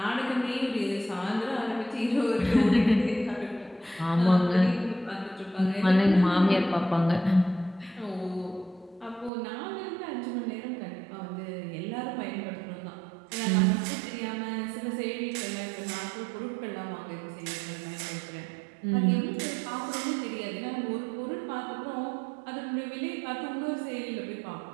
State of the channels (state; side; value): drops out; left; at 9.3 s